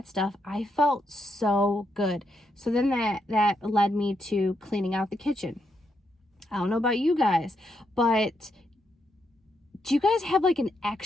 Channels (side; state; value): both; normal; correlation 0.80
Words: stuff, I felt so good. So then that led me to cleaning out the kitchen. I don't know about you guys, but do you guys have like an